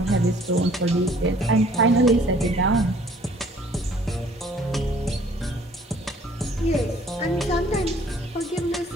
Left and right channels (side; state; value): both; normal; correlation 0.57